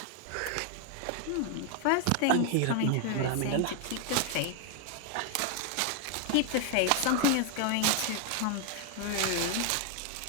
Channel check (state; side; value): different; both; correlation 0.00